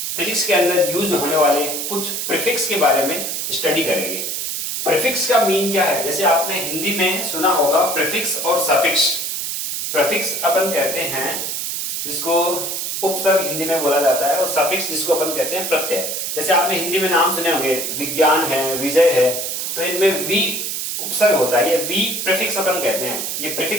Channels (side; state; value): right; noise; hiss, 3 dB below the sound